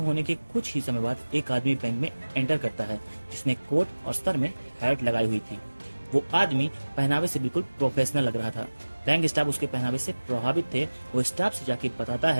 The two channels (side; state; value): both; inverted; correlation -1.00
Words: होने के कुछ ही समय बाद एक आदमी बैंक में एंटर करता है जिसने कोट और सर में हैट लगाई हुई थी। वो आदमी पहनावे से बिल्कुल प्रोफेशनल लग रहा था। बैंक स्टाफ उसके पहनावे से प्रभावित थे। वो स्टाफ से जाके बताता